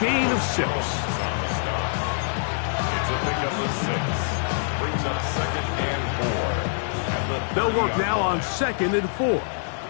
of 6. It's a pickup of 6. Brings up second and 4. They'll work now on second and 4.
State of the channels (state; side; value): silent; right; digital silence